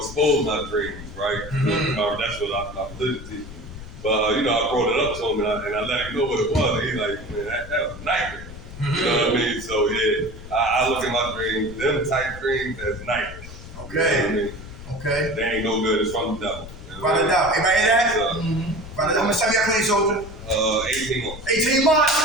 my dreams, right? That's what I'm living to. But I brought it up to him and I let him know what it was. And he's like, man, that was a nightmare. You know what I mean? So yeah, I look at my dreams, them type dreams as nightmares. Okay. You know what I mean? Okay. They ain't no good. It's from the devil. Write it down. Everybody hear that? So, How much time you got clean, soldier? 18 months. 18 months.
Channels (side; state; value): left; noise; rumble, 13 dB below the sound